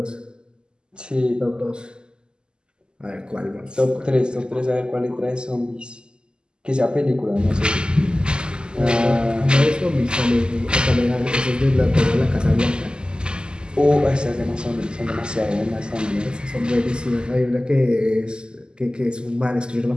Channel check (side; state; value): left; late; 0.047 ms